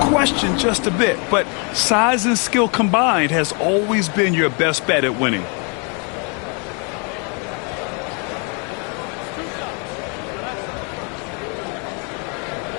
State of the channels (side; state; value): right; quieter; 36.0 dB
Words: just a bit. But size and skill combined has always been your best bet at winning.